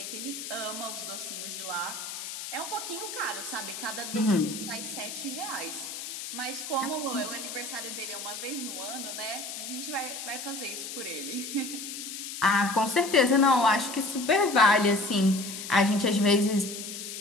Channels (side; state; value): left; noise; hiss, 8 dB below the sound